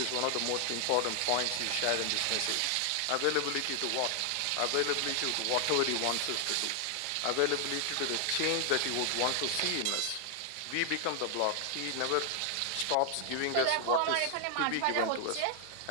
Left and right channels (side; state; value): both; different; correlation 0.00